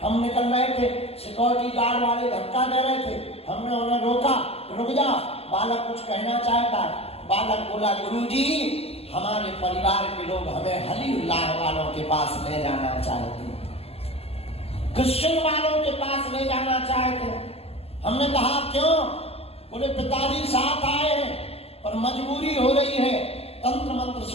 हम निकल रहे थे, सिक्योरिटी गार्ड वाले धक्का दे रहे थे, हमने उन्हें रोका, रुक जा, बालक कुछ कहना चाहता है। बालक बोला गुरुजी हमारे परिवार के लोग हमें हलीउल्लाह वालों के पास ले जाना चाहते हैं, क्रिश्चियन वालों के पास ले जाना चाहते हैं। हमने कहा क्यों? बोले पिताजी साथ आए हैं पर मजबूरी हो रही है, तंत्र मंत्र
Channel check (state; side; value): late; right; 0.29 ms